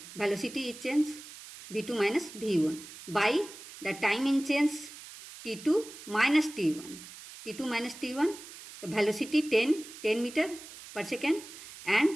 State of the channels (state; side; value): noise; right; hiss, 15 dB below the sound